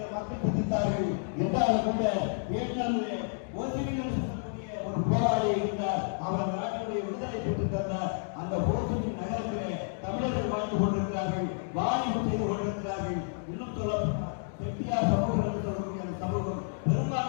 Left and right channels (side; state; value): right; silent; digital silence